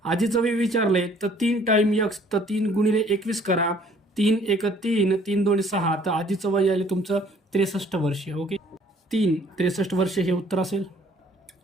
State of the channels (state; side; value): normal; both; correlation 0.58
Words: आजीचं वय विचारलंय तर 3 टाइम x तर 3 गुणिले 21 करा. 3 × 1 = 3, 3 × 2 = 6 तर आजीचं वय यायले तुमचं 63 वर्ष. ओके, 63 वर्ष हे उत्तर असेल.